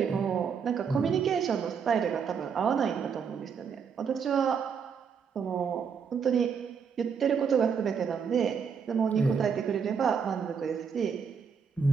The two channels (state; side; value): quieter; left; 6.6 dB